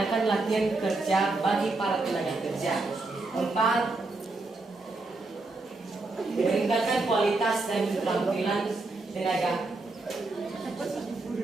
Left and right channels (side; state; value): left; quieter; 3.3 dB